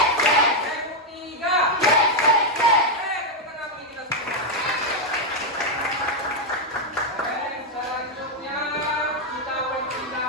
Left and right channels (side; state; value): both; normal; correlation 0.01